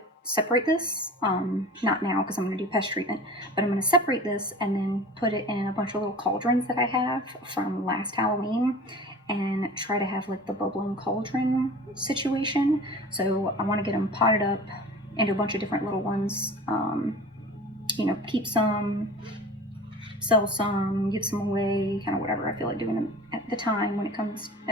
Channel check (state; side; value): normal; both; correlation 0.39